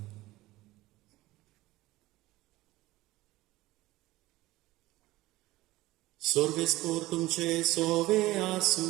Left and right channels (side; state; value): left; quieter; 18.2 dB